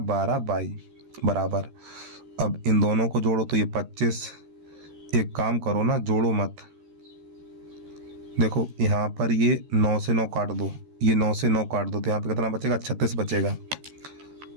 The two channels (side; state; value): left; late; 13 ms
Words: बराबर। अब इन दोनों को जोड़ो तो ये 25। एक काम करो ना, जोड़ो मत। देखो यहाँ पर ये 9 से 9 काट दो, ये 9 से 9 काट दो, तो यहाँ पे कितना बचेगा? 36 बचेगा।